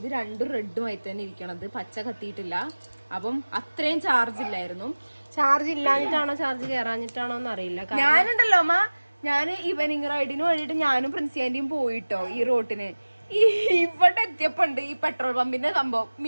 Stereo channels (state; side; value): inverted; both; correlation -1.00